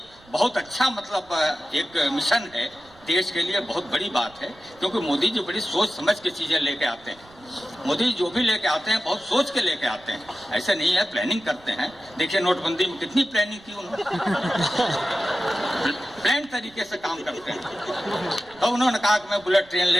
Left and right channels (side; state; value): right; noise; rumble, 27 dB below the sound